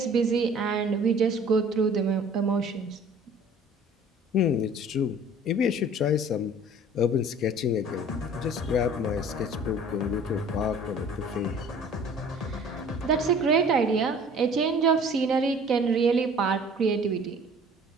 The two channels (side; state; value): both; normal; correlation 0.49